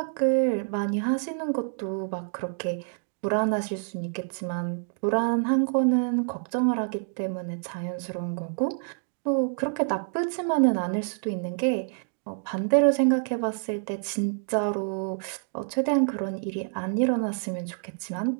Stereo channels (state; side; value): silent; left; 60 dB below the other